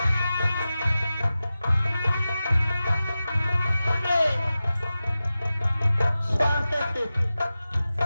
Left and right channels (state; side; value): inverted; both; correlation -0.94